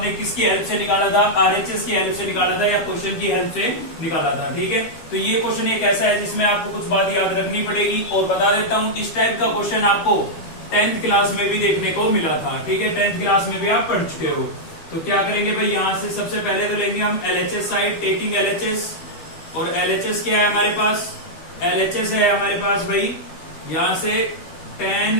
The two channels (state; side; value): late; right; 13 ms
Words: किसकी हेल्प से निकाला था, आरएचएस की हेल्प से निकाला था या क्वेश्चन की हेल्प से निकाला था। ठीक है, तो ये क्वेश्चन एक ऐसा है जिसमें आपको कुछ बात याद रखनी पड़ेगी। और बता देता हूँ, इस टाइप का क्वेश्चन आपको 10th क्लास में भी देखने को मिला था। ठीक है, 10th क्लास में भी आप पढ़ चुके हो। तो क्या करेंगे भाई, यहां से सबसे पहले तो लेंगे हम एलएचएस साइड, टेकिंग एलएचएस। और एलएचएस क्या है हमारे पास, एलएचएस है हमारे पास भाई यहां से tan